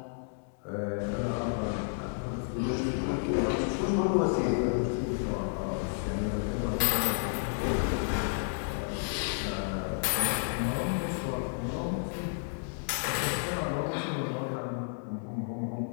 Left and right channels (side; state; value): right; silent; 57 dB below the other